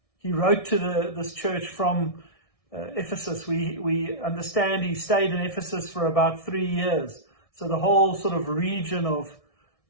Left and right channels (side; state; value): right; late; 1.6 ms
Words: He wrote to this church from Ephesus. We understand he stayed in Ephesus for about 3 years. So the whole sort of region